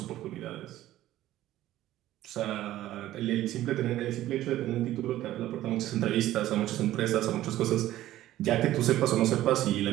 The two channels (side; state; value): left; quieter; 14.3 dB